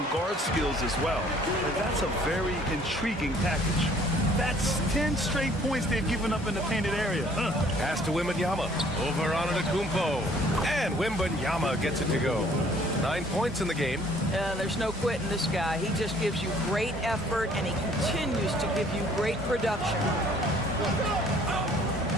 guard skills as well. And that's a very intriguing package. That's 10 straight points they've given up in the painted area. Pass to Wembanyama. Over on Antetokounmpo. And Wembanyama gets it to go. 9 points in the game. There's no quitting this guy. He just gives you great effort, and he continues to give you great production.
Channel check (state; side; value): normal; both; correlation 0.58